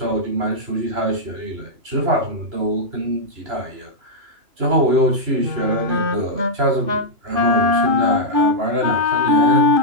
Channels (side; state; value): left; late; 3.0 ms